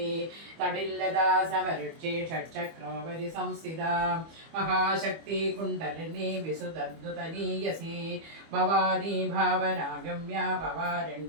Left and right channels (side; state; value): left; late; 25 ms